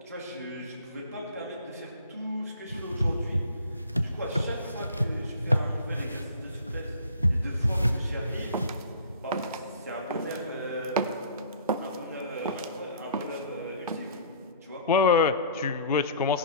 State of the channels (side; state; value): both; inverted; correlation -0.49